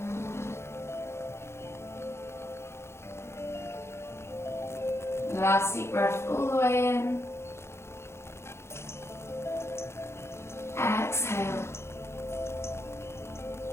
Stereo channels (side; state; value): right; late; 0.13 ms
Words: Last deep breath all the way in. Exhale.